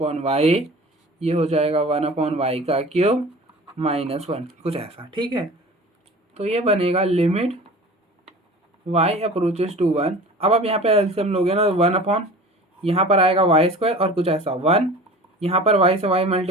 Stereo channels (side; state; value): both; normal; correlation 0.40